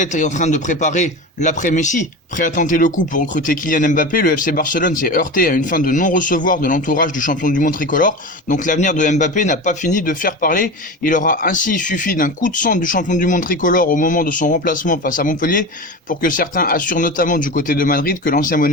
en train de préparer l'après-Messi. Prêt à tenter le coup pour recruter Kylian Mbappé, le FC Barcelone s'est heurté à une fin de non-recevoir de l'entourage du champion du monde tricolore. Donc l'avenir de Mbappé n'a pas fini de faire parler. Il aura ainsi suffi d'un coup de sang du champion du monde tricolore au moment de son remplacement face à Montpellier pour que certains assurent notamment du côté de Madrid que l'ancien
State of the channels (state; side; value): normal; both; correlation 0.27